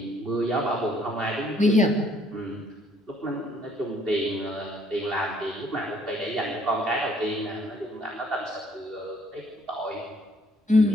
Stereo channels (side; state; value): both; normal; correlation 0.63